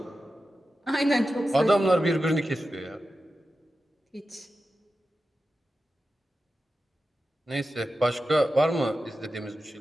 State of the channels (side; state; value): both; normal; correlation 0.92